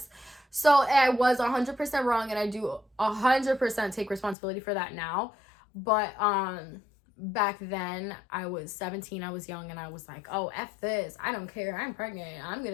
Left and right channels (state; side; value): drops out; right; at 4.4 s